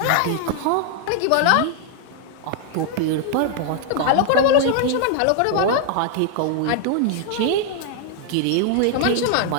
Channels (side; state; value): both; different; correlation 0.00